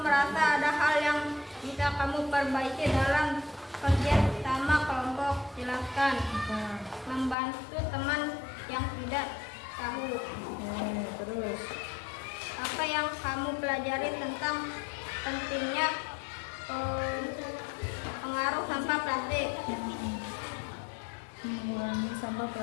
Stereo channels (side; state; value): right; drops out; at 7.4 s